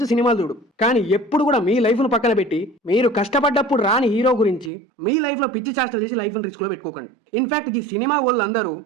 సినిమాలు చూడు. కానీ ఎప్పుడు కూడా మీ లైఫ్ ను పక్కన పెట్టి మీరు కష్టపడ్డప్పుడు రాని హీరో గురించి మీ లైఫ్ లో పిచ్చి చేష్టలు చేసి లైఫ్ ని రిస్క్ లో పెట్టుకోకండి. ఇన్ఫాక్ట్ ఈ సినిమా వాళ్ళందరూ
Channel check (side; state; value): left; drops out; at 4.7 s